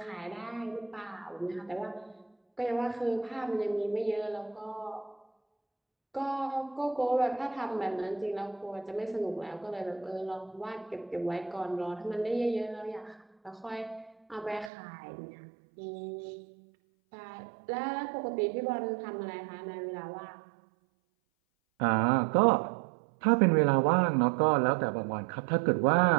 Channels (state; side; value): drops out; left; at 14.7 s